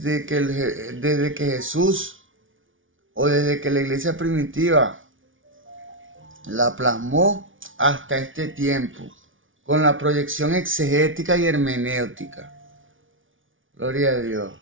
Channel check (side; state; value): left; late; 0.57 ms